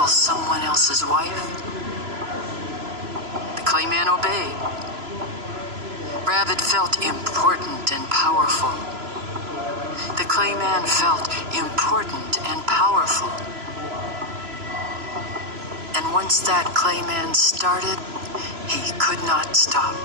someone else's wife. The clay man obeyed. Rabbit felt important and powerful. The clay man felt important and powerful. And once that clay man started, he could not stop.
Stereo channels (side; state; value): left; late; 3.0 ms